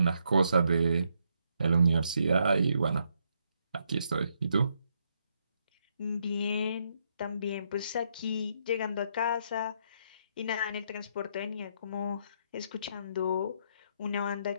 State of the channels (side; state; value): both; inverted; correlation -0.75